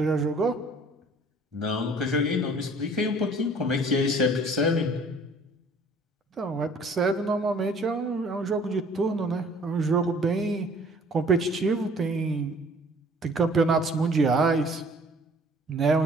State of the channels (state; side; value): normal; both; correlation 0.54